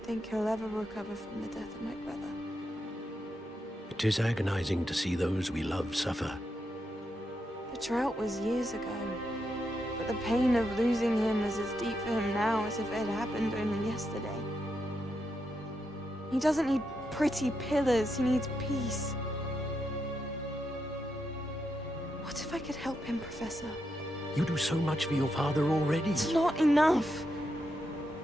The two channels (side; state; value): both; normal; correlation 0.84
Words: think he'll ever recover from the death of my brother. It is agonizing to see those we love suffer. The drought was years ago, but the pain of losing him is as deep for him now as if it had happened only yesterday. He doesn't need pretty pillars, he needs peace. What if I could help him, Professor? You do so much for your father already. It's not enough.